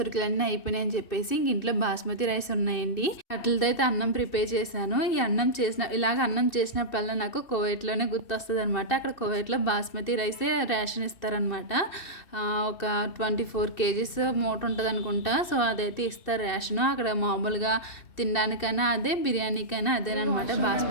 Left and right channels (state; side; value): late; right; 2.6 ms